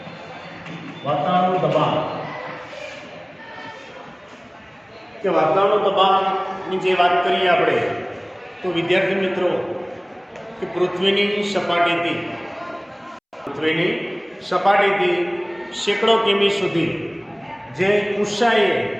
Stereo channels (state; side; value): identical; both; correlation 1.00